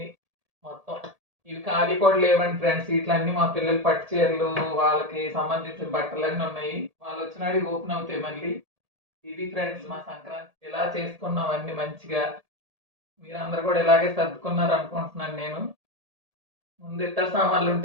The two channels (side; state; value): left; late; 1.8 ms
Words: మొత్తం. ఇవి ఖాళీ కూడా లేవండి ఫ్రెండ్స్. ఇట్లన్నీ మా పిల్లలు పట్టు చీరలు, వాళ్ళకి సంబంధించిన బట్టలన్నీ ఉన్నాయి. వాళ్ళు వచ్చినాడు ఓపెన్ అవుతాయి మళ్ళీ. ఇది ఫ్రెండ్స్ మా సంక్రాంతి. ఇలా చేసుకున్నాం అన్ని మంచిగా. మీరందరూ కూడా ఇలాగే సర్దుకున్నారు అనుకుంటున్నాను నేను. ముందు ఇతర సామాన్లు